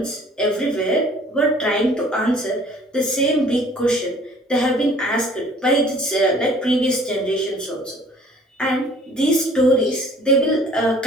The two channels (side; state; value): both; normal; correlation 0.53